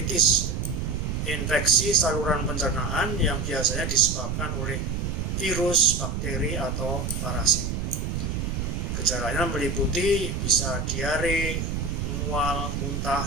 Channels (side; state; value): right; noise; rumble, 2 dB below the sound